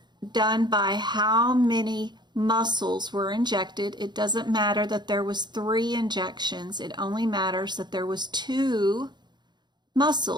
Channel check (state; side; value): late; left; 0.21 ms